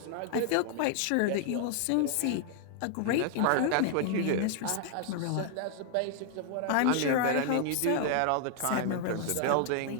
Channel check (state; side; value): different; both; correlation 0.00